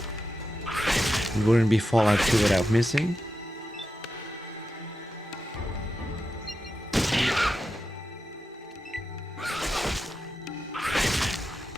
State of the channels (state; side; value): normal; both; correlation 0.89